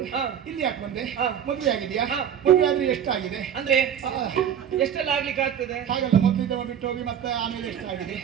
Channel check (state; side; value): quieter; left; 8.9 dB